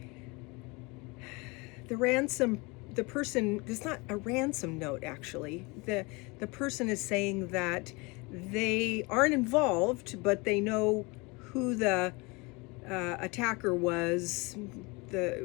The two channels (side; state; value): right; quieter; 26.8 dB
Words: The person, it's not a ransom note actually. The person is saying that they aren't involved, but they know who the attacker was,